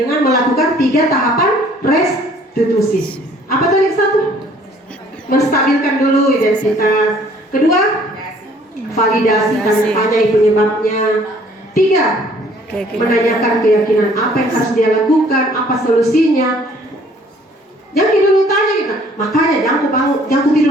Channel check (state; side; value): normal; both; correlation 0.58